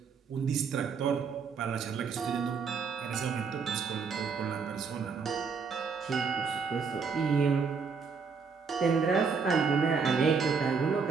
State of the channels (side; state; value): left; quieter; 5.5 dB